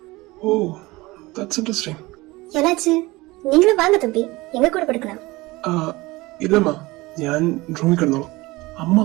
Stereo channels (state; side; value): quieter; left; 21.2 dB